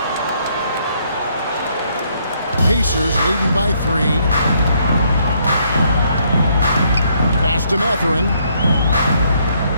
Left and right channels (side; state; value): both; inverted; correlation -0.70